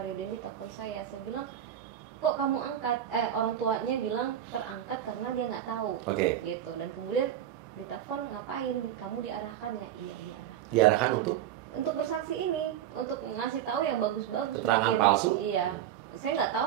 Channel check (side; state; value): left; quieter; 10.9 dB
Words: Dendi telepon saya." Saya bilang, "Kok kamu angkat?" Orang tuanya bilang terangkat karena dia nggak tahu. Gitu. Dan kemudian ditelepon, "Ngapain? Kamu diarahkan ya?" "Iya, diarahkan." Diarahkan untuk bersaksi ini, untuk ngasih tahu yang bagus-bagus mungkin. Palsu? Iya. Saya nggak tahu